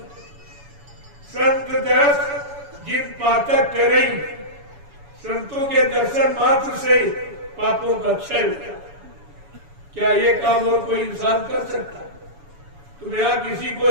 संत दर्श जिन पातक करें, संतों के दर्शन मात्र से पापों का क्षय होता। क्या ये काम और कोई इंसान कर सकता? तुम यहाँ किसी को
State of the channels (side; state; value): left; late; 7.1 ms